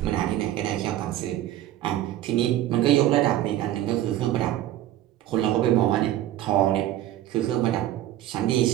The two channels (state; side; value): quieter; left; 13.3 dB